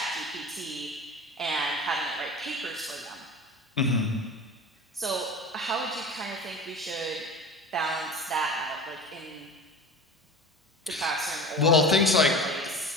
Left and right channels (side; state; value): both; normal; correlation 0.35